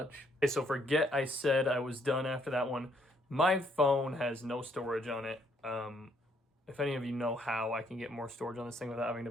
Okay, so forget I said I was done after that one. My phone has no storage on it. If any of you know how I can get more storage on this thing without having to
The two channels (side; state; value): both; normal; correlation 0.69